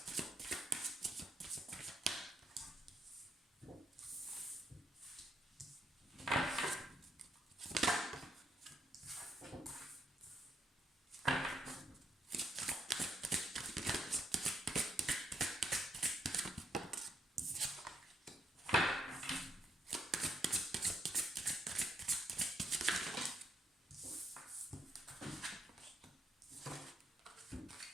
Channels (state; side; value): normal; both; correlation 0.75